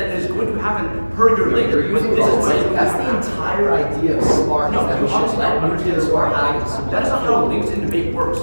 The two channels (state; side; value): inverted; both; correlation -1.00